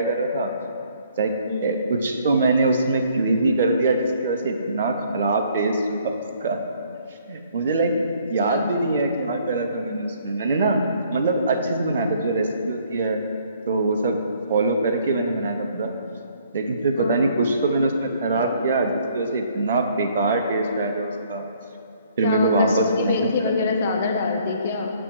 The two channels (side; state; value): both; inverted; correlation -0.63